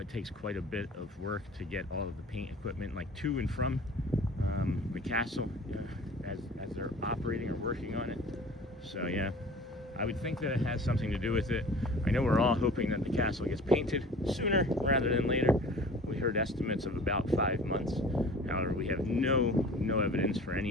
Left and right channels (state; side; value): normal; both; correlation 0.44